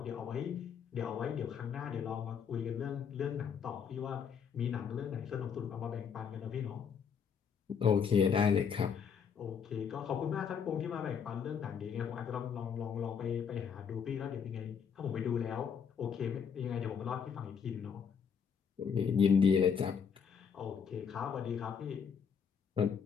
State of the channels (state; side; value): quieter; right; 6.9 dB